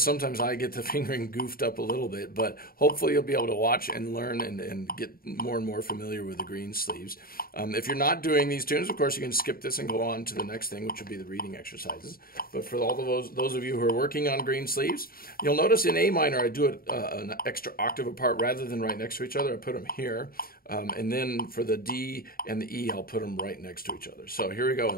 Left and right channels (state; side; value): late; right; 0.43 ms